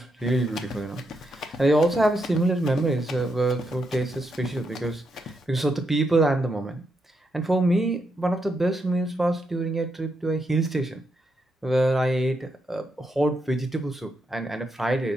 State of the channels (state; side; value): normal; both; correlation 0.81